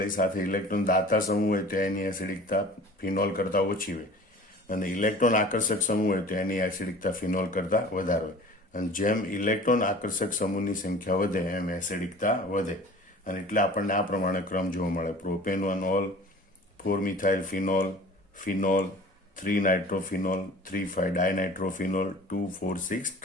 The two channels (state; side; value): normal; both; correlation 0.43